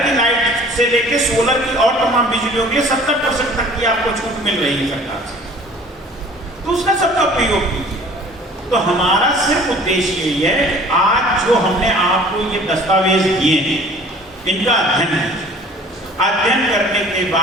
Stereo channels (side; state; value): both; normal; correlation 0.49